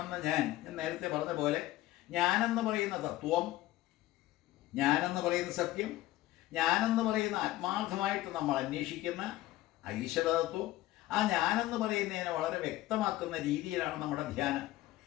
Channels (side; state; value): right; quieter; 16.3 dB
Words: ഞാൻ നേരത്തെ പറഞ്ഞ പോലെ, ഞാനെന്ന് പറയുന്ന തത്വം, ഞാനെന്ന് പറയുന്ന സത്യം, ഞാനെന്ന് പറയുന്ന ആത്മാർത്ഥമായിട്ട് നമ്മൾ അന്വേഷിക്കുന്ന ഈശ്വരതത്വം, ആ ഞാനെന്ന് പറയുന്നതിനെ വളരെ വ്യക്തമാക്കുന്ന രീതിയിലാണ് നമ്മുടെ ധ്യാനം.